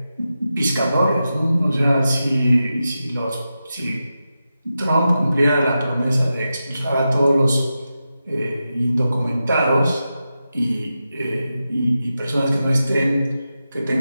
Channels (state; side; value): inverted; both; correlation -0.90